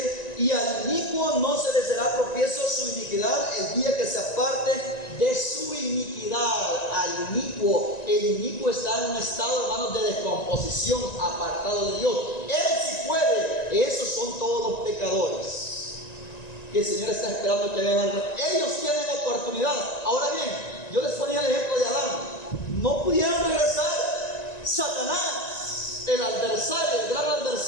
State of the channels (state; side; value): late; right; 1.9 ms